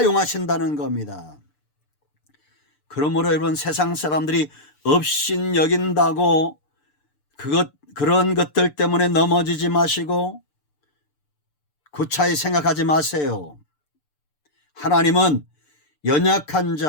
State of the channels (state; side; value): late; right; 6.8 ms